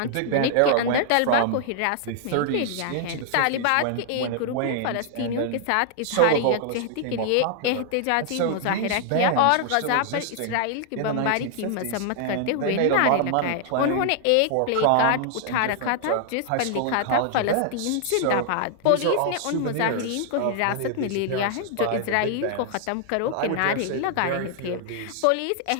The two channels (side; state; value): both; different; correlation 0.00